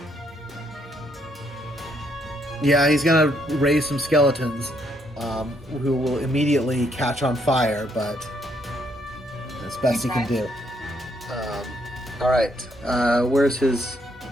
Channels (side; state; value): both; normal; correlation 0.72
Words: Yeah, he's going to raise some skeletons who will immediately catch on fire, but that's best he can do. All right, where's his